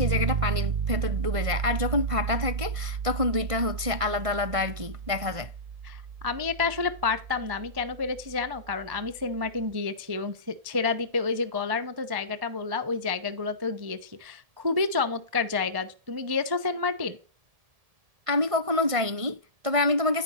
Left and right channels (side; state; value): left; late; 1.6 ms